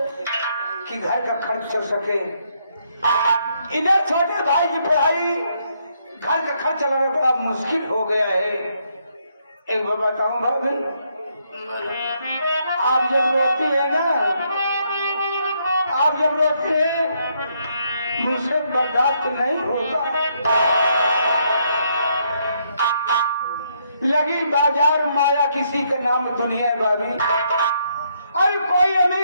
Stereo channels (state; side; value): inverted; both; correlation -0.74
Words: कि घर का खर्च चल सके। इधर छोटे भाई की पढ़ाई, घर का खर्च चलाना बड़ा मुश्किल हो गया है। एक बार बताऊं भाभी, आप जब रोती है ना, आप जब रोती है मुझसे बर्दाश्त नहीं होता। लगी बाजार माया किसी का नाम दुनिया है भाभी। अरे कोई